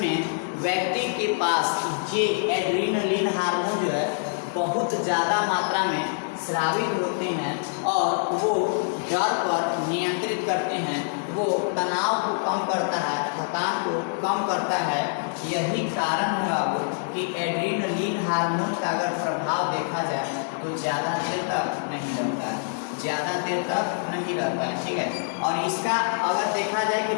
में व्यक्ति के पास ये एड्रीनलिन हार्मोन जो है बहुत ज़्यादा मात्रा में स्रावित होते हैं और वो डर पर नियंत्रित करते हैं, वो तनाव को कम करता है, थकान को कम करता है। यही कारण है वो कि एड्रीनलिन हार्मोन का अगर प्रभाव देखा जाए तो ज़्यादा देर तक नहीं रहता है, ठीक है। और इसका अगर देखा जाए कि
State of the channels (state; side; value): silent; right; digital silence